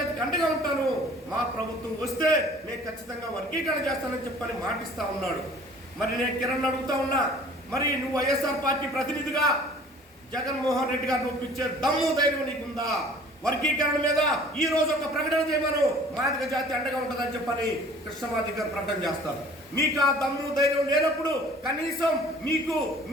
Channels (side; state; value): both; normal; correlation 0.50